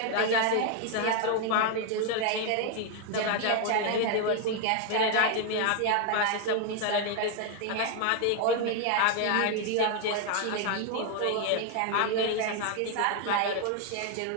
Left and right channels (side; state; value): both; different; correlation 0.01